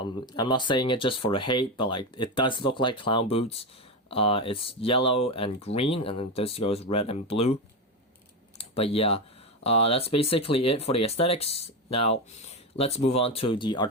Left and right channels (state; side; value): normal; both; correlation 0.14